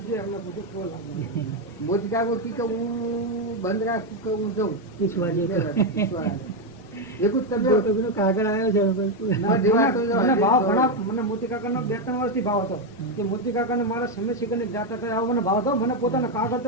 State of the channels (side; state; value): both; normal; correlation 0.05